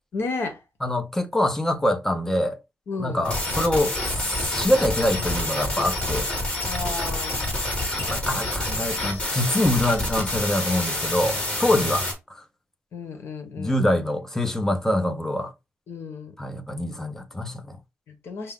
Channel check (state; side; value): normal; both; correlation 0.73